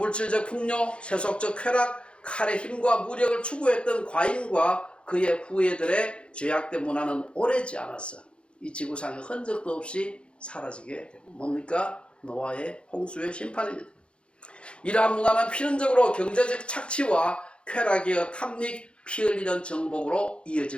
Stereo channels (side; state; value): right; late; 0.057 ms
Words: 풍요, 세속적 쾌락, 칼의 힘과 무력을 추구했던 가인과 그의 후예들의 죄악된 문화는 오래지 않았어. 이 지구상에 흔적도 없이 사라지게 됩니다. 뭡니까? 노아의 홍수의 심판입니다. 이러한 문화는 필연적으로 경제적 착취와 쾌락이여 탐닉, 피 흘리는 정복으로